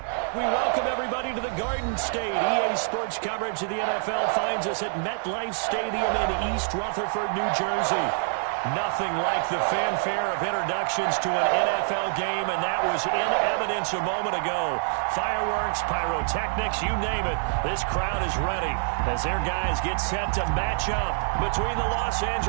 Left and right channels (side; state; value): left; silent; digital silence